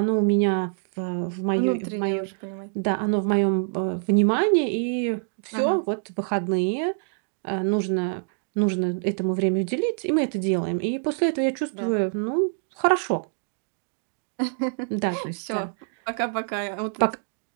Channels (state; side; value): silent; left; digital silence